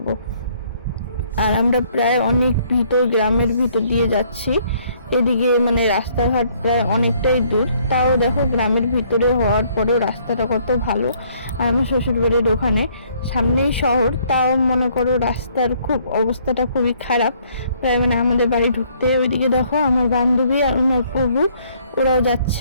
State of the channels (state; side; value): inverted; both; correlation -0.64